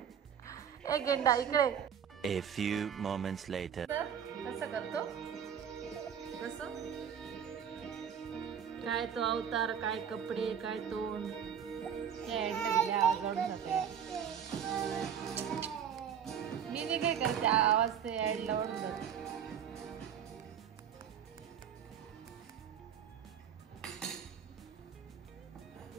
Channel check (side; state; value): left; quieter; 8.2 dB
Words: ए गेंडा इकडे. A few moments later. कसं करतो कसं, काय तो अवतार, काय कपडे, काय तोंड. मी नाही काय करते, आवाज ते ऍडला ओढून जाते.